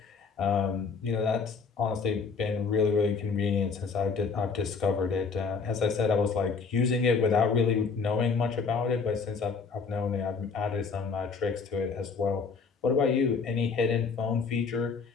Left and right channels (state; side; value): quieter; right; 5.1 dB